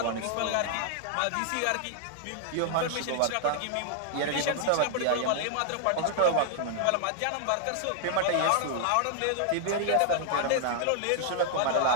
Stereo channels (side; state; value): both; different; correlation -0.01